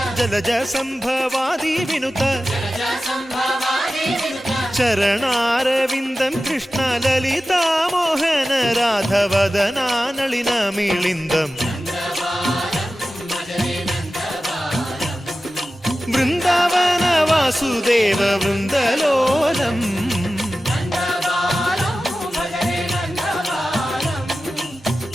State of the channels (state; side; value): normal; both; correlation 0.94